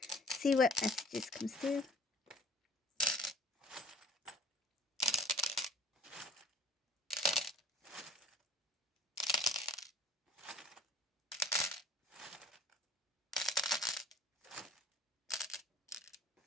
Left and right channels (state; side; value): normal; both; correlation 0.49